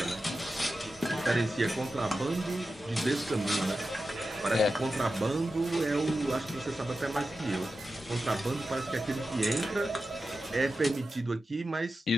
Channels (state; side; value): normal; both; correlation 0.92